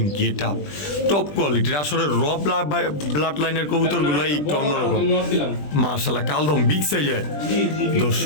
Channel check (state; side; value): late; right; 20 ms